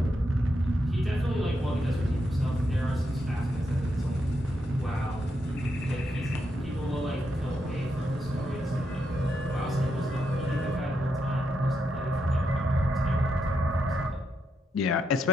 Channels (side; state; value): both; normal; correlation 0.81